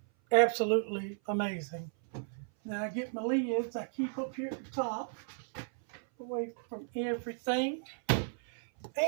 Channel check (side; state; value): left; silent; 55 dB below the other